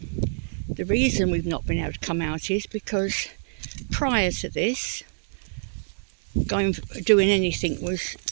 The reason we've not been able to come out is because prior to this, doing anything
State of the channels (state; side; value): silent; left; 61 dB below the other